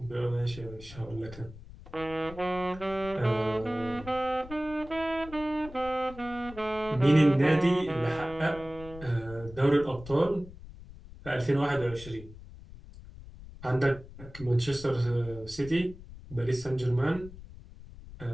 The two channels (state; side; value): noise; left; rumble, 16 dB below the sound